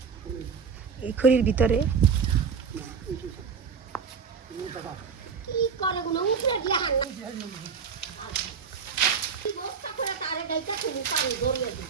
এই খড়ির ভিতরে।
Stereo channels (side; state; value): left; quieter; 6.1 dB